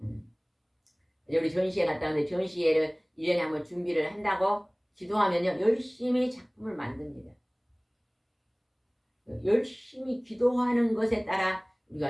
우리 전시회 갔다 왔는데 전시회를 1년에 한번 준비를 한다고 기도하면요 열심히 작품을 만듭니다. 열심히 기도하는 것에 따라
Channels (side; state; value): both; identical; correlation 1.00